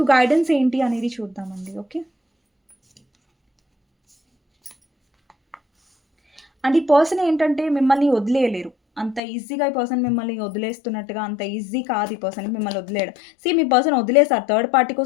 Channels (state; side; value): drops out; right; at 9.2 s